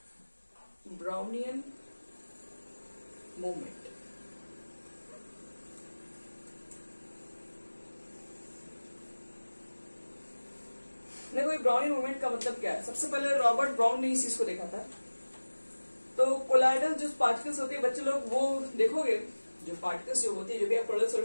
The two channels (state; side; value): inverted; both; correlation -1.00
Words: Brownian movement. देखो ये ब्राउनियन मूवमेंट का मतलब क्या है? सबसे पहले रॉबर्ट ब्राउन ने इस चीज को देखा था। तो कोलाइडल जो पार्टिकल्स होती है बच्चे लोग, वो देखोगे जो पार्टिकल्स जो होती है, जो भी आप कोलाइडल